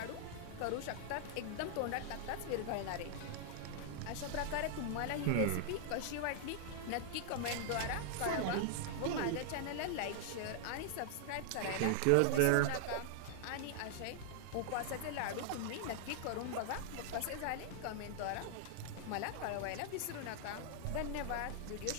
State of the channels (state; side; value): different; both; correlation -0.01